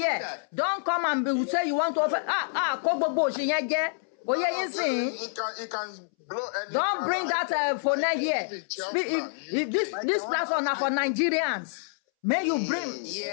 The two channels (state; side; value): silent; right; 60 dB below the other